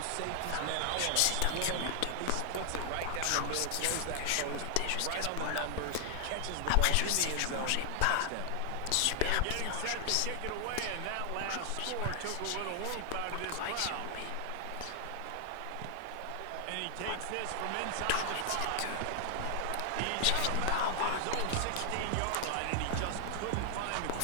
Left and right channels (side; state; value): both; different; correlation 0.00